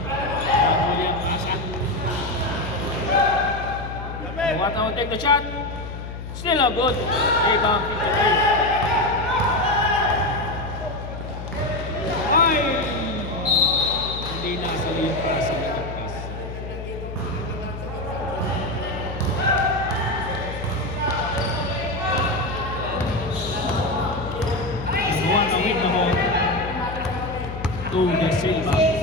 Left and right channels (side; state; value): left; noise; hum, 9 dB below the sound